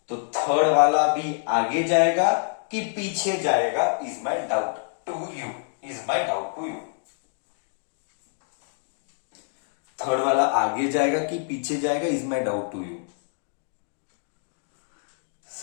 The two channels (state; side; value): silent; right; digital silence